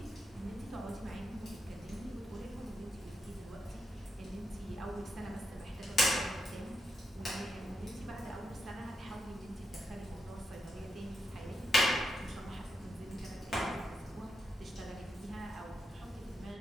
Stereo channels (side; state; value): both; normal; correlation 0.84